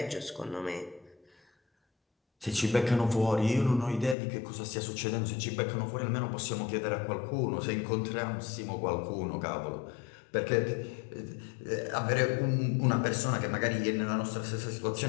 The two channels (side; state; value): right; drops out; at 4.2 s